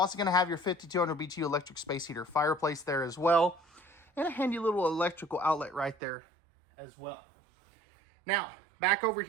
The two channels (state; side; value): drops out; left; at 6.0 s